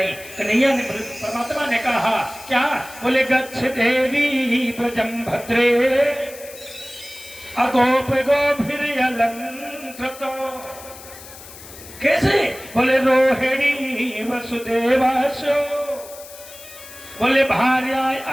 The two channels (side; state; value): left; noise; hiss, 17 dB below the sound